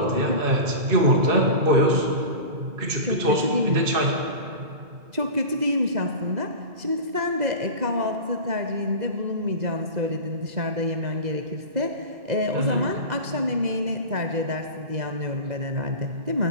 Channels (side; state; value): left; late; 2.0 ms